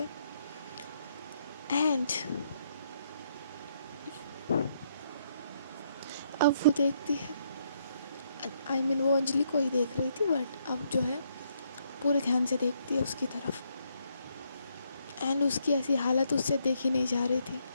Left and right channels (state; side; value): inverted; both; correlation -0.73